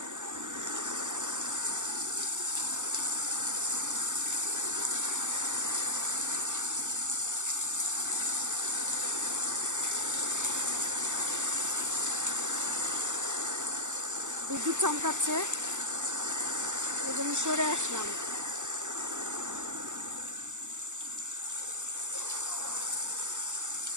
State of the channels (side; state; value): left; late; 0.85 ms